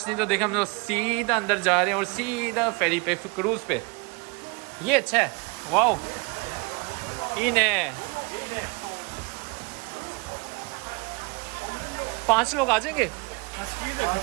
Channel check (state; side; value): quieter; left; 28.6 dB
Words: नहीं। तो देखा हम लोग सीधा अंदर जा रहे हैं और सीधा फेरी पे, क्रूज पे। ये अच्छा है, वाओ। इन्हें 5 लोग आ जाएंगे,